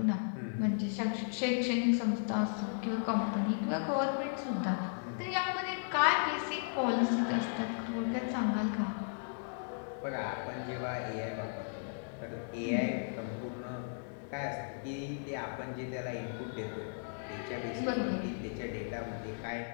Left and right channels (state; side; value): silent; right; digital silence